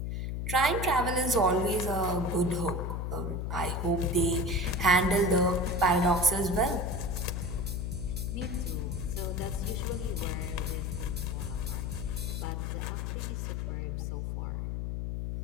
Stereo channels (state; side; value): noise; left; hum, 2 dB below the sound